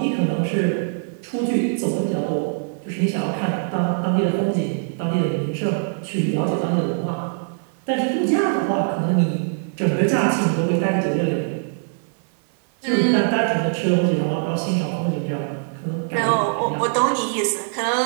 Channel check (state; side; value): silent; left; 61 dB below the other